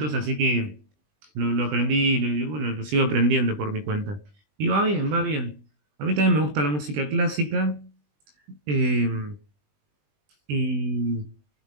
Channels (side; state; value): left; late; 20 ms